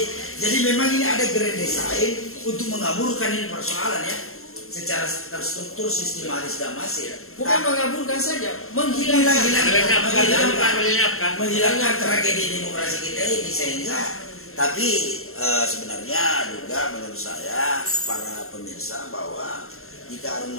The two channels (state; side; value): late; right; 0.62 ms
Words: jadi memang ini ada grand design untuk mengaburkan ini persoalan ya, secara terstruktur, sistematis dan masif. Bukan mengaburkan saja, menghilangkan tragedi demokrasi kita ini sehingga. Tapi sebenarnya juga menurut saya para pemirsa bahwa jika Harun